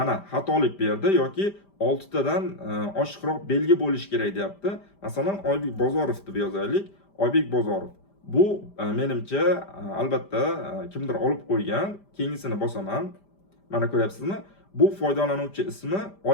xatolik berdi yoki 6 tadan oshiqroq belgi bo'lishi kerak deyapti. Masalan, Oybek Bozorov deb yozaylik. Oybek Bozorov. Bu menimcha albatta kimdir olib qo'ygan. Keyingisini bosaman. Mana ko'ryapsizmi? Bu foydalanuvchi ismi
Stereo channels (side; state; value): right; late; 5.0 ms